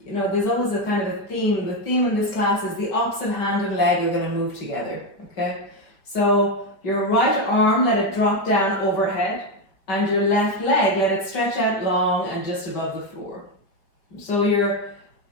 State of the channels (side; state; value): right; late; 5.0 ms